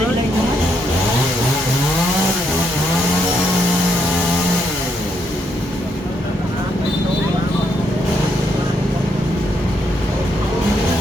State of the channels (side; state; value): both; normal; correlation 0.76